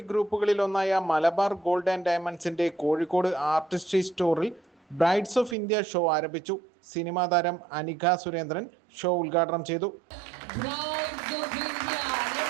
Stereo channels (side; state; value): left; drops out; at 5.6 s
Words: ഗ്രൂപ്പുകളിലൊന്നായ മലബാർ ഗോൾഡ് ആൻഡ് ഡയമണ്ട്സിന്റെ കോഴിക്കോട് ആർട്ടിസ്ട്രി സ്റ്റോറിൽ ബ്രൈഡ്സ് ഓഫ് ഇന്ത്യ ഷോ ആരംഭിച്ചു. സിനിമാ താരം അനിക സുരേന്ദ്രൻ ഷോ ഉദ്ഘാടനം ചെയ്തു.